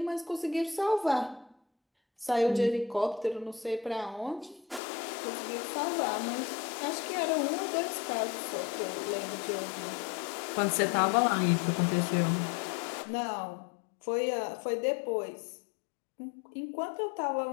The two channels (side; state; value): right; drops out; at 4.8 s